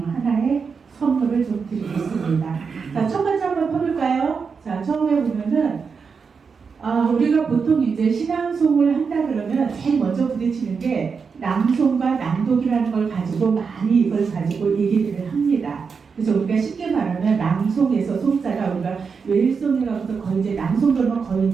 선물을 좀 드리겠습니다. 자, 첫 번째 한번 펴볼까요? 자, 처음에 보면은 우리가 보통 이제 신앙송을 한다 그러면 제일 먼저 부딪히는 게 낭송과 낭독이라는 걸 가지고 많이 이걸 가지고 얘기들을 합니다. 그래서 우리가 쉽게 말하면 낭송에서 송자가 우리가 웨일송이라고서 거의 이제 낭송 그러면 거의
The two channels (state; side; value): quieter; left; 5.5 dB